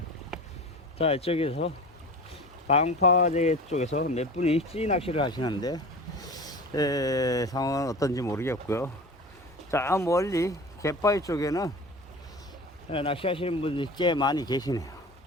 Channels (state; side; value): normal; both; correlation 0.35